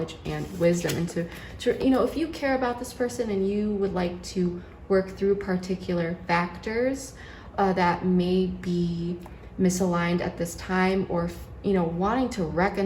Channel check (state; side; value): identical; both; correlation 1.00